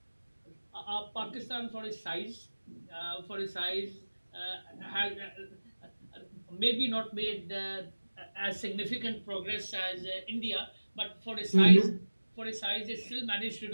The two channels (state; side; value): inverted; both; correlation -1.00